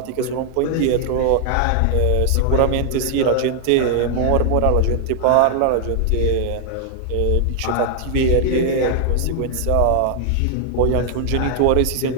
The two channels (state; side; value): different; both; correlation 0.00